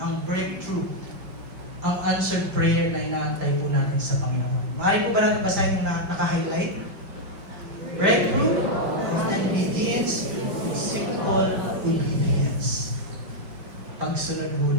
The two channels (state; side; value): late; left; 5.0 ms